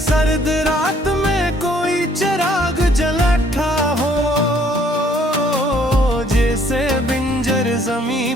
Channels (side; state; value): both; normal; correlation 0.62